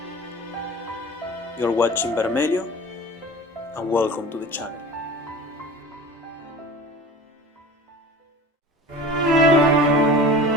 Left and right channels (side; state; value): both; normal; correlation 0.37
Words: You're watching Bermelio, and welcome to the channel.